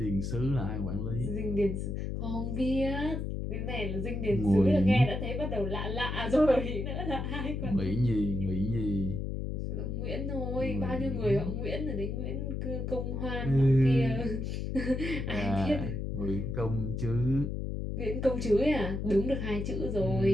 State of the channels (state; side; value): noise; left; hum, 3 dB below the sound